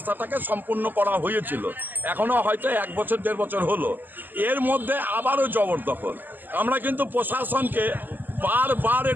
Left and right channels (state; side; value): late; left; 0.088 ms